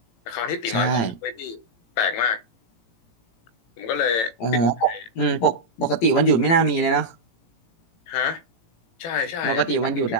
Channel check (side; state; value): right; late; 18 ms